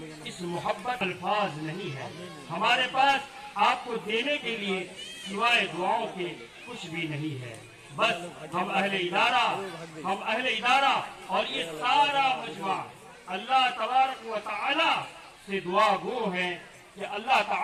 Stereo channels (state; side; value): identical; both; correlation 1.00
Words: اس محبت الفاظ نہیں ہے۔ ہمارے پاس آپ کو دینے کے لیے سوائے دعاؤں کے کچھ بھی نہیں ہے۔ بس ہم اہل ادارہ اور یہ سارا مجمع اللہ تبارک و تعالی سے دعا گو ہیں کہ اللہ